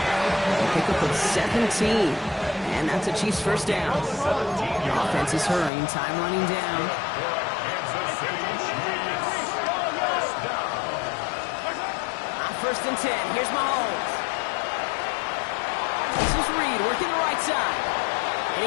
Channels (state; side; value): drops out; right; at 5.7 s